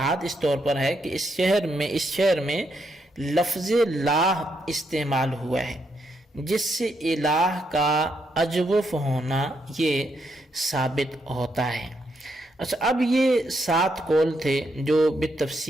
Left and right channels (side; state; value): both; normal; correlation 0.78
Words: اس طور پر ہے کہ اس شعر میں لفظ لاہ استعمال ہوا ہے جس سے الہ کا اجوف ہونا یہ ثابت ہوتا ہے۔ اچھا، اب یہ 7 قول تھے جو